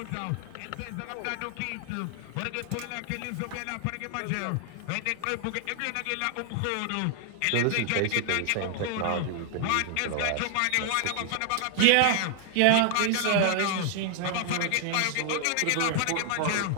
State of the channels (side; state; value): both; different; correlation 0.00